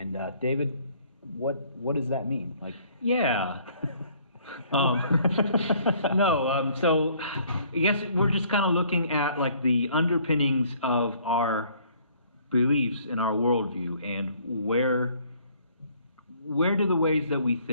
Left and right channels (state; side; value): inverted; both; correlation -0.60